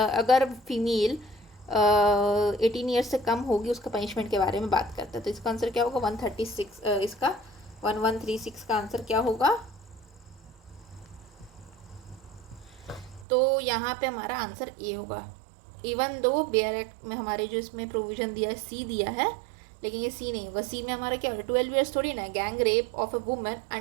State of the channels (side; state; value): left; drops out; at 13.2 s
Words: फीमेल 18 ईयर्स से कम होगी उसका पनिशमेंट के बारे में बात करता है। तो इसका आंसर क्या होगा, 136, इसका 1136 का आंसर क्या होगा। तो यहाँ पे हमारा आंसर A होगा। इवन दो बेयर एक्ट में हमारे जो इसमें प्रोविज़न दिया है C दिया है, लेकिन ये C नहीं होगा। C में हमारा क्या होगा, 12 ईयर्स थोड़ी ना। Gang rape of a women